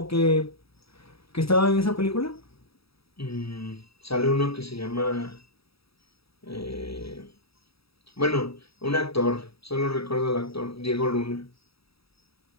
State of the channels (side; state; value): right; late; 0.77 ms